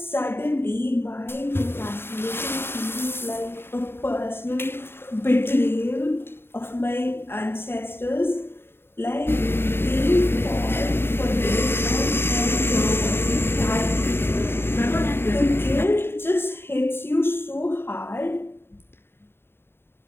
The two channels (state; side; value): late; right; 0.11 ms